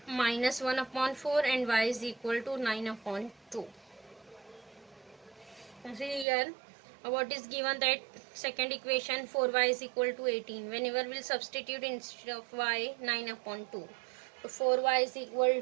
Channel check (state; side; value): drops out; left; at 6.2 s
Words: minus 1 upon 4 and y is equal to 9 upon 2. See here, what is given, that second equation 4y is equal to 18. Whenever we'll substitute instead of y 9 upon 2. So 4y is equal